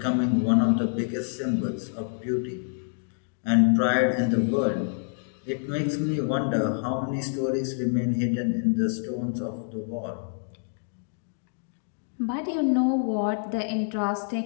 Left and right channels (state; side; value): silent; right; digital silence